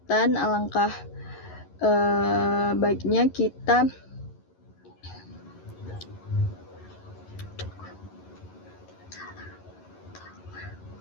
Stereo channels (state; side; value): late; right; 11 ms